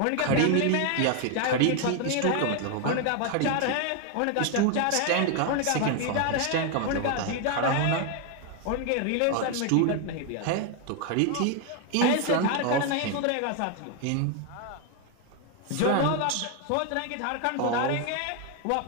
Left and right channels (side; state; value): both; different; correlation 0.01